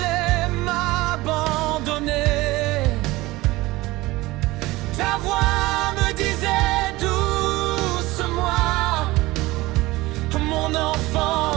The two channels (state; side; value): quieter; left; 19.7 dB